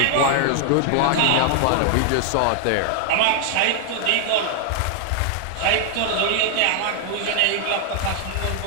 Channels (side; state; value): both; different; correlation 0.00